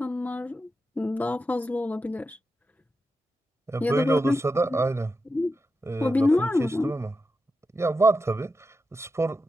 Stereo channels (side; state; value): both; normal; correlation 0.89